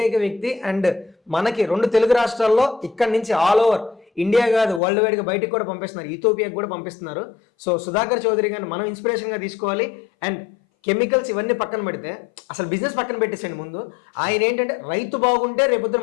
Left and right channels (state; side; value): drops out; right; at 4.8 s